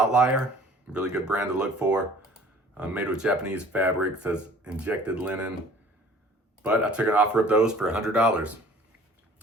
Really good brand to look for. Made with Japanese fabric, says injected linen. But I took an offer of those for $100.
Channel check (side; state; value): both; normal; correlation 0.51